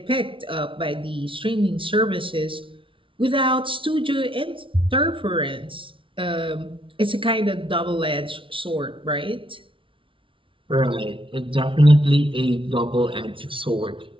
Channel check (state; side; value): late; left; 0.25 ms